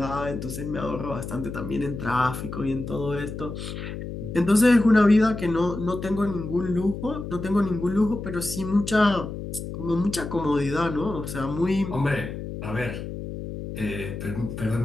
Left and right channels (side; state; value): left; noise; hum, 8 dB below the sound